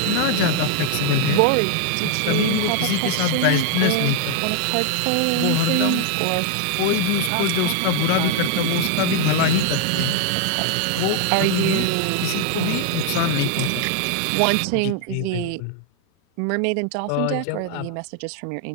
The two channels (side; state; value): both; different; correlation 0.00